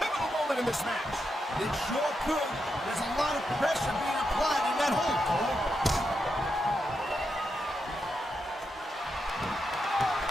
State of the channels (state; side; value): normal; both; correlation 0.85